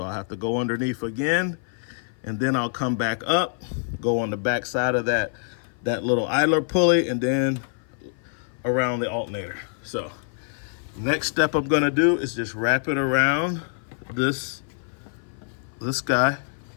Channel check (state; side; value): silent; right; 55 dB below the other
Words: I have to go underneath again, and then I'll come back up, go on the back side of that little idler pulley, and then around the alternator. So next step I'm gonna do is just wrap it around this guy